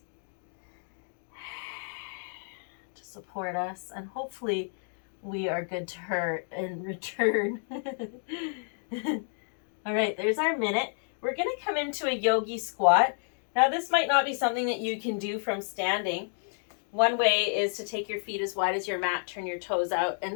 to support us, and hopefully we are good to her in return. All right, there's our minute. We're going to come into a yogi squat. Now, this might not be something that you can do from standing. One way is to take your feet as wide as your mat, turn your toes out,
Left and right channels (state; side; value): silent; right; 58 dB below the other